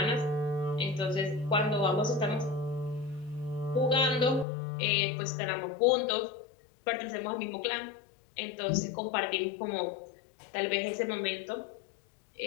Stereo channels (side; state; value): right; drops out; at 4.5 s